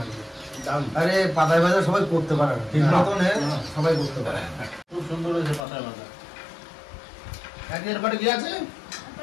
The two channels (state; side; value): drops out; right; at 5.6 s